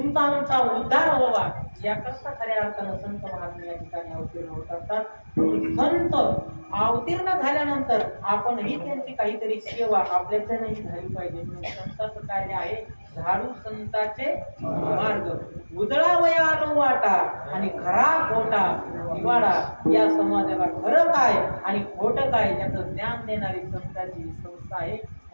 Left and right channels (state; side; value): inverted; both; correlation -1.00